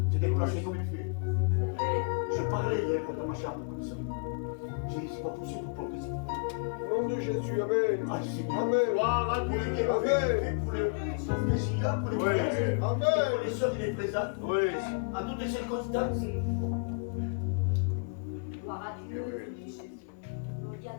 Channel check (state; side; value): quieter; right; 38.3 dB